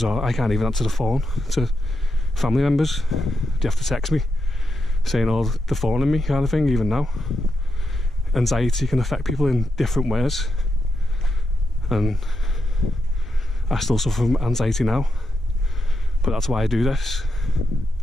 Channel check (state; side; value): normal; both; correlation 0.85